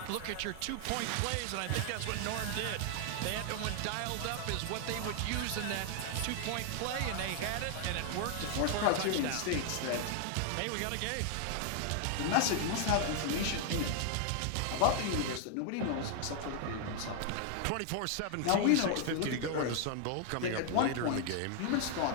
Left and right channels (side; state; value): both; different; correlation 0.00